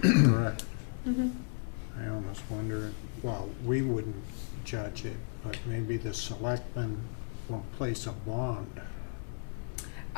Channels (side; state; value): right; silent; digital silence